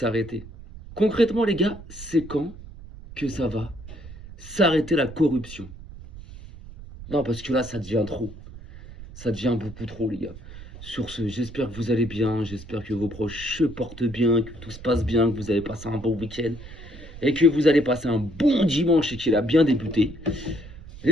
Concrètement les gars, c'est quand que ça va s'arrêter la corruption? Non parce que là ça devient trop. Ça devient beaucoup trop les gars. Sur ce, j'espère que vous allez bien, j'espère que vos proches se portent bien, que tout se passe bien, que vous avez passé un bon week-end et que vous allez passer un bon dimanche et qu'il a bien débuté.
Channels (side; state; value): right; noise; rumble, 15 dB below the sound